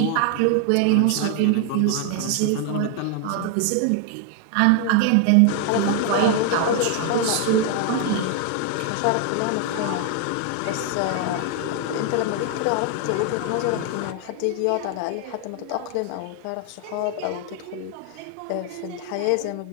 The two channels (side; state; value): both; different; correlation 0.00